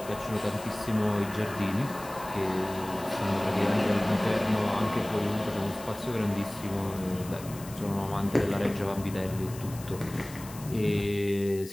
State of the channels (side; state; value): left; noise; hiss, 16 dB below the sound